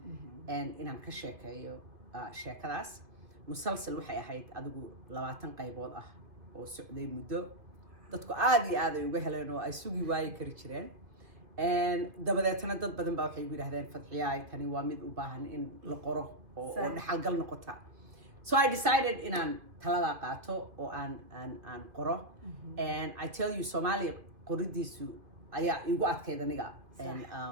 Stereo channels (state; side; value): late; left; 2.5 ms